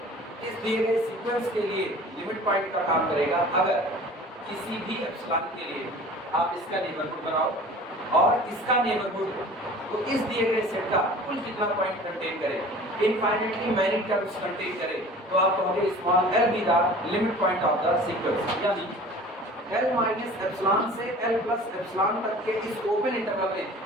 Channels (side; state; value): both; normal; correlation 0.43